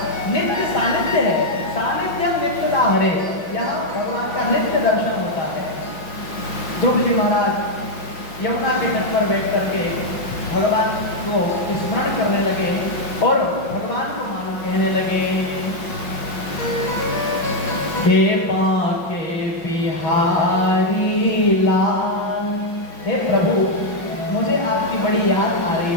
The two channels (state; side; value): late; right; 5.8 ms